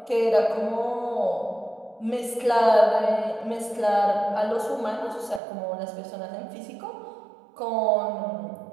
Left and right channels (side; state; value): left; drops out; at 5.4 s